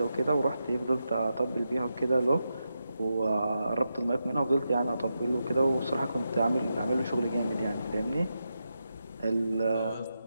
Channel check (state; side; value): inverted; both; correlation -0.87